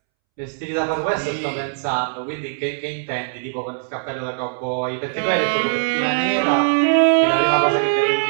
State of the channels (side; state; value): left; silent; 65 dB below the other